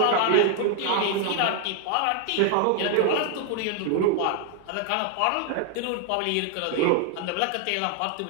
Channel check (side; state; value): both; different; correlation 0.00